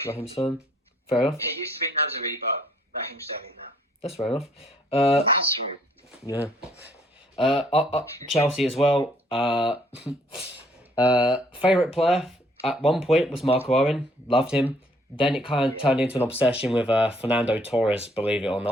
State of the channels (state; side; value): normal; both; correlation 0.65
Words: Raheem Sterling. Fair enough. It used to be Nazari, but Raheem Sterling now. That's fair enough. Nazari. Yeah. Chelsea as well. Favourite player at one point was Marco Owen. Loved him. Then it kind of turned into an obsession with Fernando Torres, believe it or